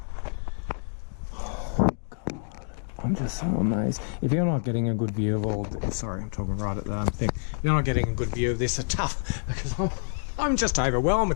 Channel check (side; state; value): right; silent; digital silence